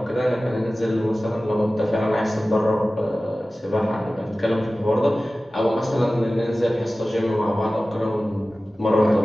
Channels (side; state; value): both; normal; correlation 0.96